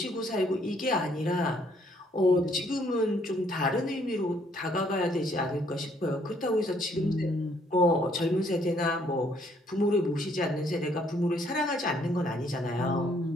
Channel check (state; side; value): normal; both; correlation 0.66